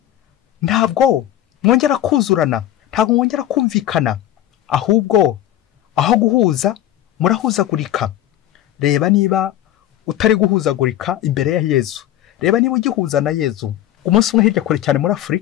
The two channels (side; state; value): right; quieter; 12.7 dB